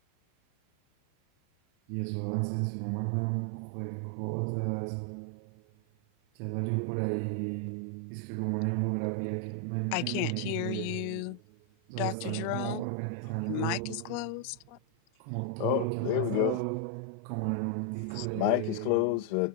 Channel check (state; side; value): different; both; correlation 0.00